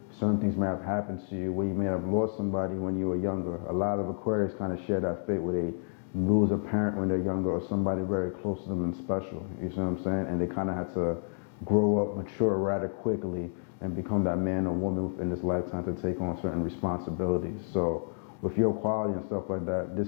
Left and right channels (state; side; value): silent; right; digital silence